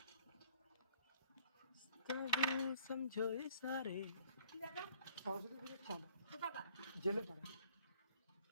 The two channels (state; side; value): inverted; both; correlation -0.59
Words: সমঝো সারে সরস্বতী পূজার চাঁদা জেলে পাড়া।